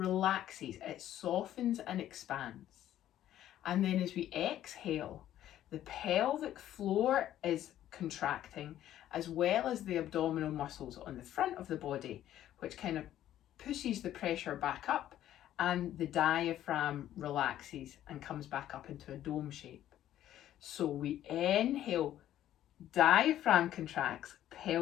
it softens and expands. And then as we exhale, the pelvic floor is contracting as well as the abdominal muscles on the front of the body, which kind of pushes the pressure back up, and the diaphragm relaxes and comes back up into a dome shape. So we inhale, diaphragm contracts,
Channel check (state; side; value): quieter; right; 12.3 dB